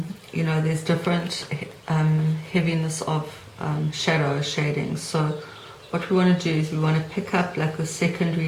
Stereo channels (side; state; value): both; identical; correlation 1.00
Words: you know, there's different heaviness of shadow shading. So what we want to do is we want to pick up like the secondary